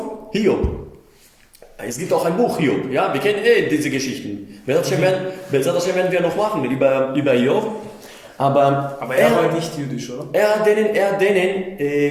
Es gibt auch ein Buch Hiob, ja, wir kennen diese Geschichten. Das werden wir noch machen über Hiob. Aber er war nicht jüdisch, oder? Er hat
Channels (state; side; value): identical; both; correlation 1.00